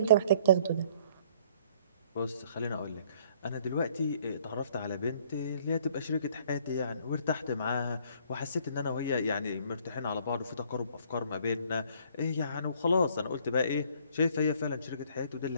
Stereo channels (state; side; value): inverted; both; correlation -0.60